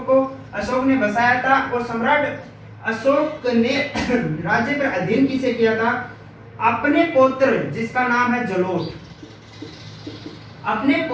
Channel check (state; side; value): identical; both; correlation 1.00